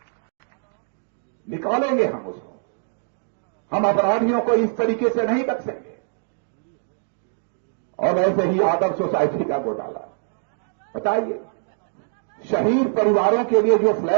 निकालेंगे हम उसको। हम अपराधियों को इस तरीके से नहीं बख्शेंगे। और वैसे ही आदर्श सोसाइटी का घोटाला, बताइए, शहीद परिवारों के लिए जो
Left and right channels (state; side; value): silent; left; digital silence